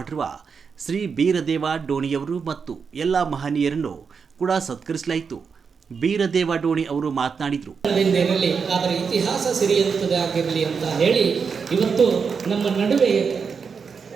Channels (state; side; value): quieter; left; 5.8 dB